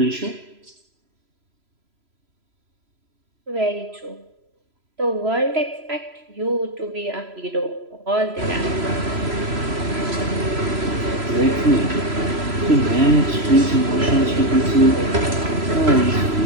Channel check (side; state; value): left; late; 3.0 ms